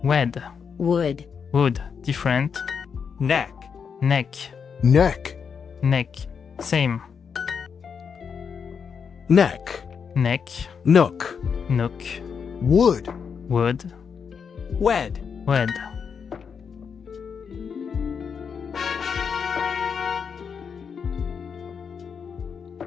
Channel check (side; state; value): right; quieter; 6.5 dB